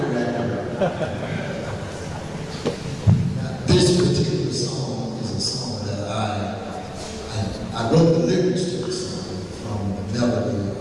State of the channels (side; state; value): both; identical; correlation 1.00